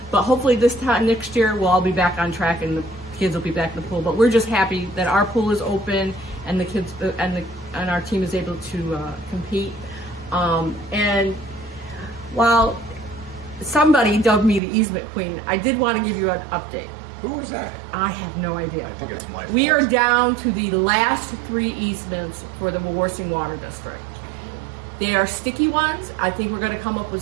but hopefully this time next year we'll all be back on track and the kids will be back in the pool. But we're just happy that our pool is open and the kids and the and our team is able to compete. And while somebody dubbed me the easement queen, I did want to give you an update. Who was that? I have no idea. I think it's my We fault. are down to the last 3 easements for the Wawarsing Water District. They are sticky ones. I think we're going to come up with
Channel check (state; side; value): drops out; left; at 14.6 s